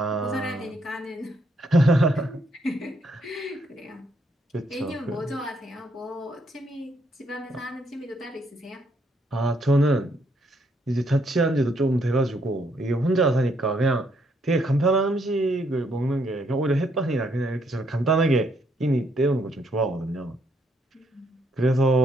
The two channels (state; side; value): normal; both; correlation 0.72